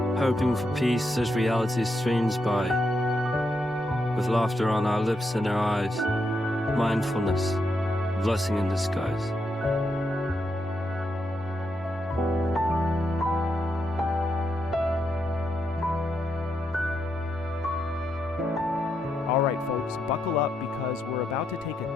Hoping for peace as reality streams by, with laughter on our lips and our eyes. Mindfulness, blessing in disguise. All right, folks, buckle up because we're about to take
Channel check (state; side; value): normal; both; correlation 0.82